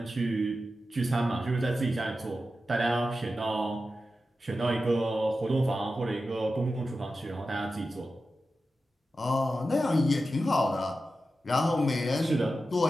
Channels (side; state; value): both; normal; correlation 0.92